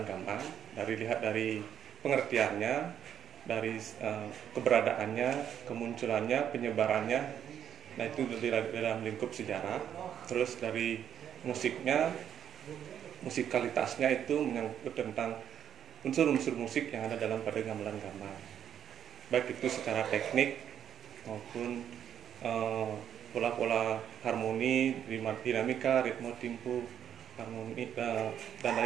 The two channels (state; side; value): quieter; left; 9.3 dB